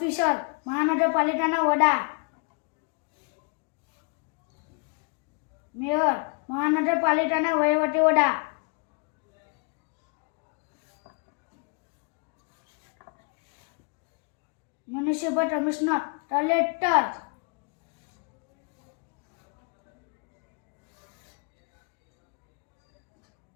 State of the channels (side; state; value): right; quieter; 36.4 dB